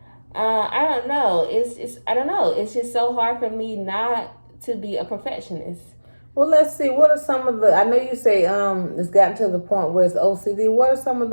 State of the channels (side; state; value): both; inverted; correlation -1.00